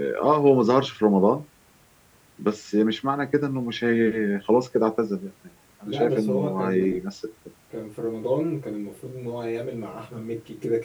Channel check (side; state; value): both; identical; correlation 1.00